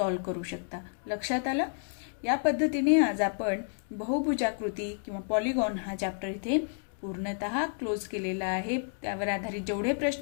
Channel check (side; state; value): right; silent; digital silence